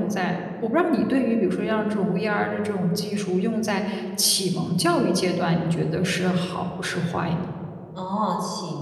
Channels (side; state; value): both; identical; correlation 1.00